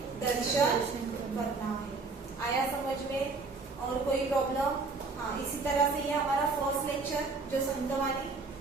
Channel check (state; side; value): quieter; left; 4.0 dB